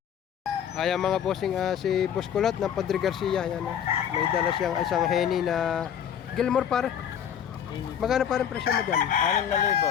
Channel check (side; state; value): right; quieter; 8.9 dB